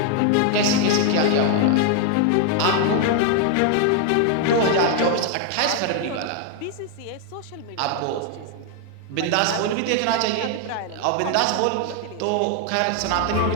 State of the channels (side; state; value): both; different; correlation 0.00